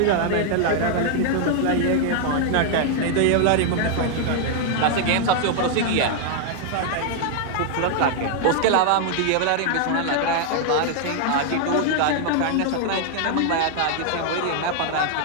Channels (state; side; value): different; both; correlation 0.00